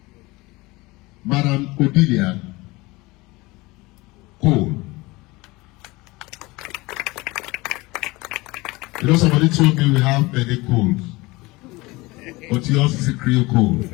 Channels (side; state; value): right; quieter; 22.4 dB